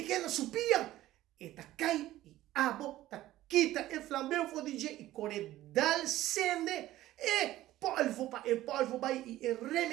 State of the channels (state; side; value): quieter; left; 15.1 dB